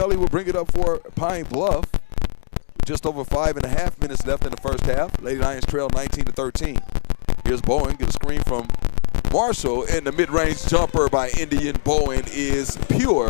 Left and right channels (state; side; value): silent; right; digital silence